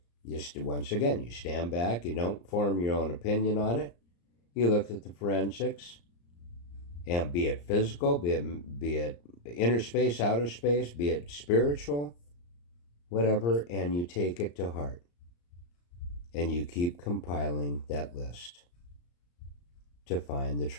once again, you stand back, you don't form your own opinion on it, you look at the forensics, and be it physical, be it inner space, outer space, be it spiritual, whatever, and you take it to heart. And you keep compiling that list to find the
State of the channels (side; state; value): right; late; 34 ms